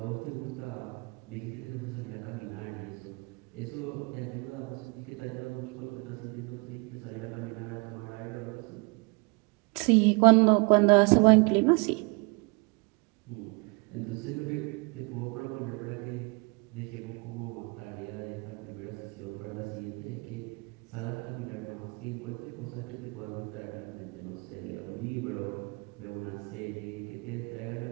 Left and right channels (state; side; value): quieter; left; 30.0 dB